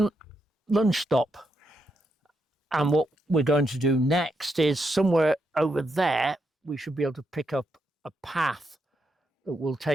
lunch stop. And what we're going to do next is somewhere over there we should be able to pick up a path that will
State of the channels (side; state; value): both; normal; correlation 0.81